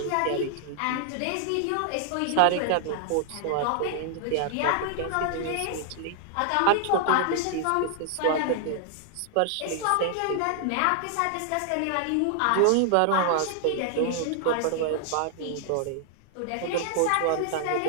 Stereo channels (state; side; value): different; both; correlation 0.00